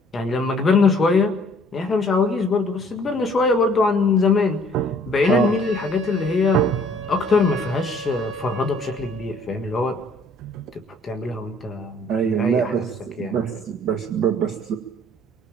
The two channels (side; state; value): both; normal; correlation 0.58